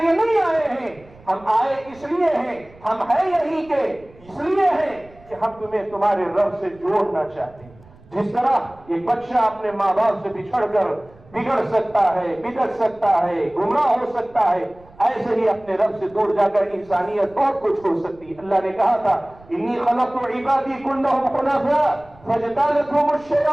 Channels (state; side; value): noise; right; rumble, 25 dB below the sound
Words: نہیں آئے ہیں، ہم آئے اس لیے ہیں، ہم ہیں یہی کے اس لیے ہیں کہ ہم تمہیں تمہارے رب سے جوڑنا چاہتے ہیں. جس طرح ایک بچہ اپنے ماں باپ سے بچھڑ کر بگڑ سکتا ہے، بگڑ سکتا ہے، گمراہ ہو سکتا ہے، ایسے ہی اپنے رب سے دور جا کر انسانیت بہت کچھ ہو سکتی ہے. اللہ نے کہا تھا انی خلقت عبادی کلهم حنفاء فاجتالتهم